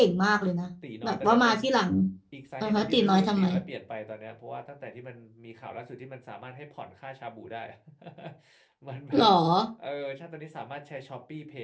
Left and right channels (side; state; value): both; identical; correlation 1.00